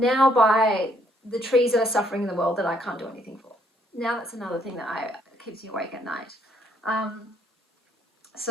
by the trees that are suffering in the world that I can't do anything for. Now that's another thing that keeps me awake at night.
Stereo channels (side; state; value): both; normal; correlation 0.69